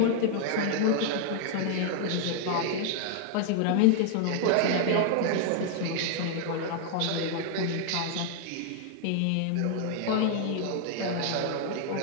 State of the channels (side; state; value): both; different; correlation 0.00